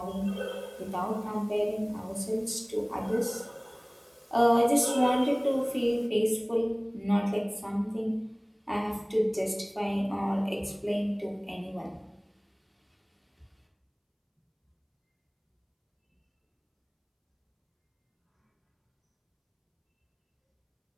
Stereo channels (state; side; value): identical; both; correlation 1.00